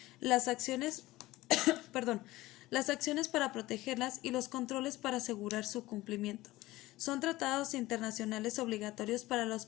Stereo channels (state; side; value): quieter; right; 18.1 dB